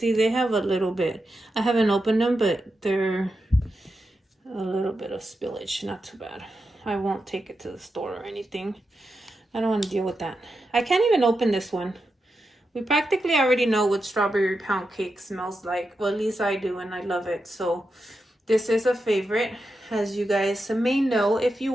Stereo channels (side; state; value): both; normal; correlation 0.88